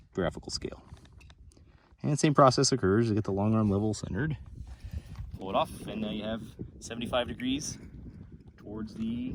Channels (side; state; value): both; identical; correlation 1.00